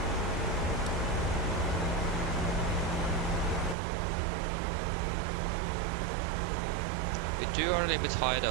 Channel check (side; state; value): left; drops out; at 3.8 s